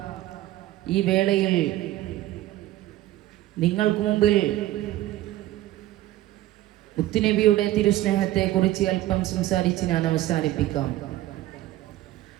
ഈ വേളയിൽ നിങ്ങൾക്ക് മുമ്പിൽ മുത്തുനബിയുടെ തിരുസ്നേഹത്തെക്കുറിച്ച് അല്പം സംസാരിച്ച് ഞാൻ അവസാനിപ്പിക്കാം.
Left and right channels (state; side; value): quieter; left; 15.0 dB